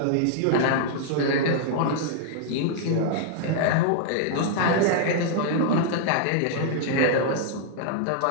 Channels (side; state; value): both; different; correlation -0.01